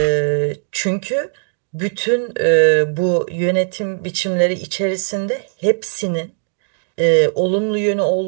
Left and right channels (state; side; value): silent; left; digital silence